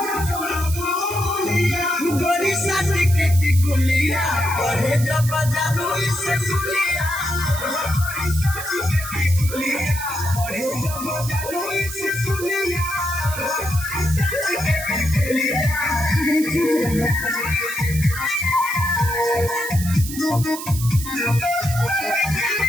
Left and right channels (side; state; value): right; noise; hiss, 9 dB below the sound